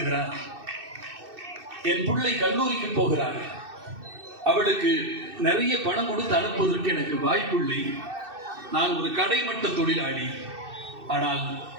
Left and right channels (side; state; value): left; late; 2.6 ms